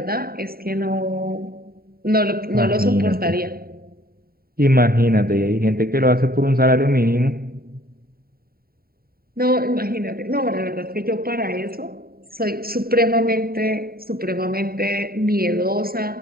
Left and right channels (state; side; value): late; left; 0.43 ms